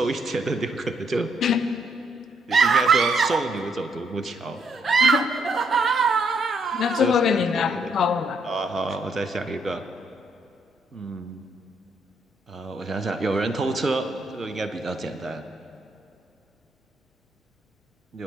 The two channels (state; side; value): normal; both; correlation 0.72